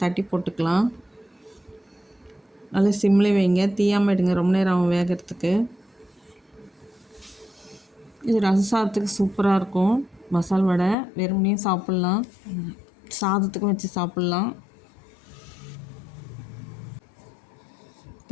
தட்டி போட்டுக்கலாம். நல்லா சிம்மில் வைங்க, தீயாமல் எடுங்க. ரொம்ப நேரம் ஆகும் வேகிறதுக்கு. இது ரசம் சூப்பராக இருக்கும். மசால் வடை வெறுமனையும் சாப்பிட்லாம், சாதத்துக்கும் வச்சு சாப்பிட்லாம்.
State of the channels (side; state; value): right; drops out; at 11.0 s